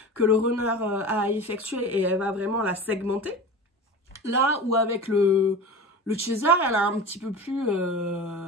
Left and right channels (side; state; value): both; normal; correlation 0.32